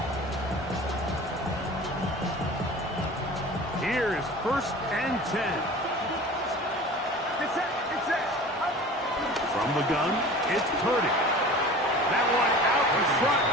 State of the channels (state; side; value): normal; both; correlation 0.40